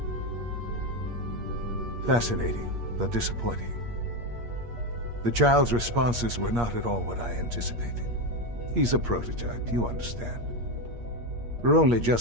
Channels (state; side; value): late; left; 8.5 ms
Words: Fascinating, but disappointing. The child's responses were not at all what I anticipated. He's a prototype, you understand. We're only